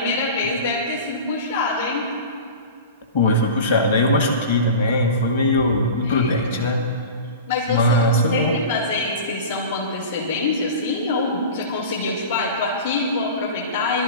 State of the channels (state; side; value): inverted; both; correlation -0.33